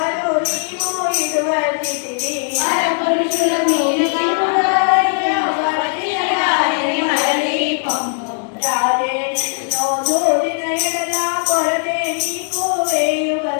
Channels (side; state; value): right; silent; 67 dB below the other